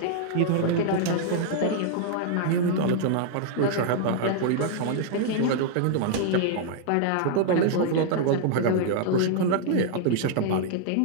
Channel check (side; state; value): both; different; correlation -0.01